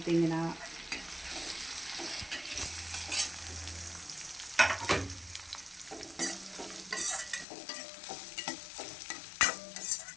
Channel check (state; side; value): drops out; right; at 7.5 s